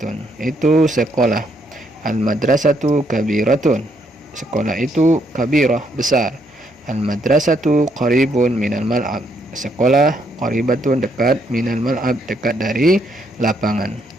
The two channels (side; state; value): both; normal; correlation 0.73